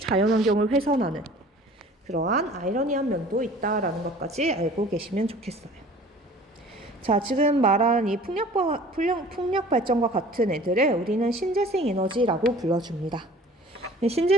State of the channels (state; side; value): normal; both; correlation 0.47